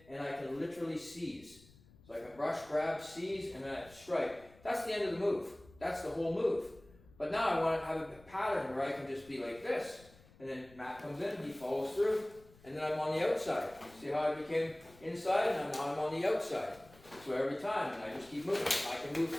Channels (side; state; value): left; noise; rumble, 25 dB below the sound